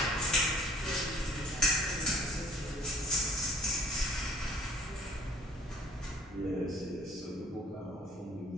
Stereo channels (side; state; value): both; normal; correlation 0.56